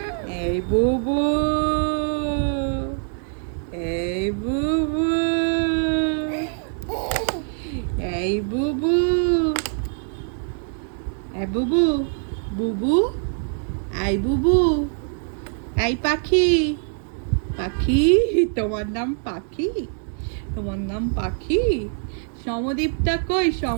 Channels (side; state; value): left; silent; 62 dB below the other